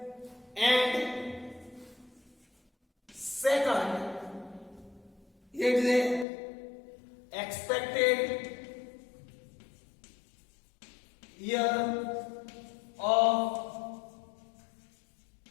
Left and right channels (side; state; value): right; drops out; at 6.2 s